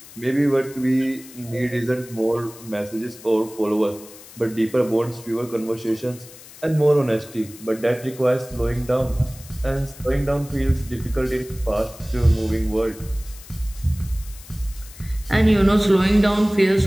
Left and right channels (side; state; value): left; noise; hiss, 19 dB below the sound